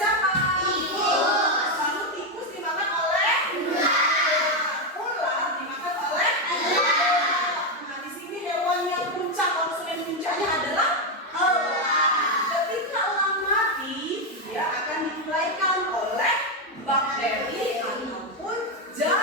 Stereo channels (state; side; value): normal; both; correlation 0.05